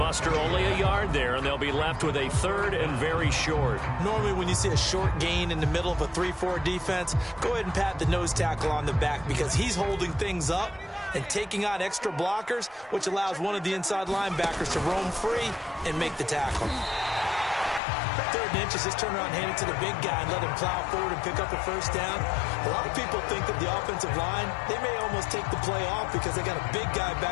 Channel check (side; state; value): right; drops out; at 17.8 s